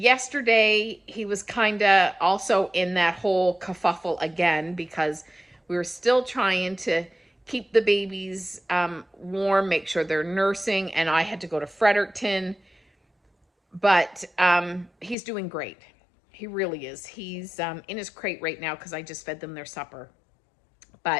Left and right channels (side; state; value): right; drops out; at 15.2 s